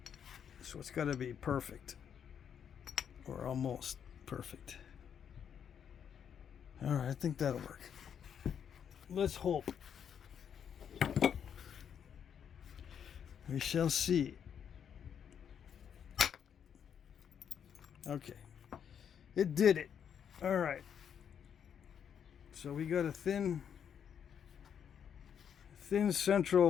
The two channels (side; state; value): right; quieter; 8.1 dB